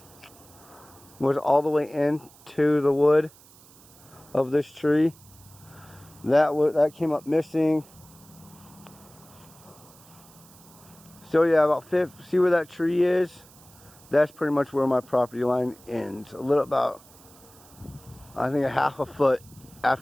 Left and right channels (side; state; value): right; noise; hiss, 24 dB below the sound